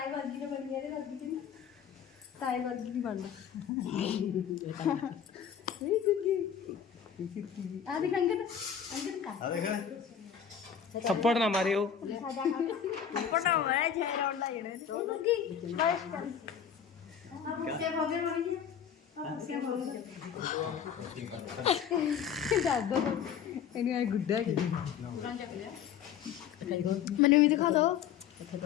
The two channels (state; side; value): quieter; right; 8.3 dB